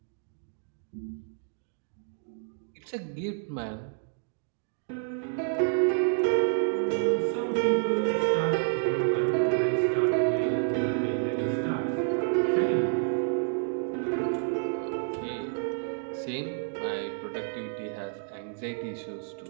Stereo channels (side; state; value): left; silent; digital silence